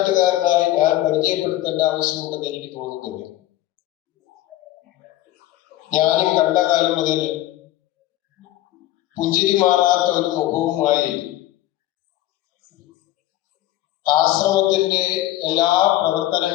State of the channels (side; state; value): right; quieter; 14.9 dB